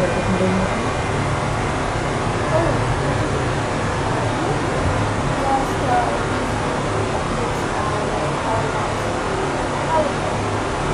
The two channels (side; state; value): both; identical; correlation 1.00